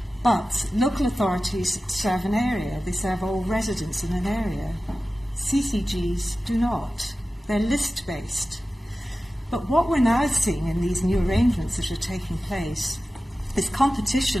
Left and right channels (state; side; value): normal; both; correlation 0.95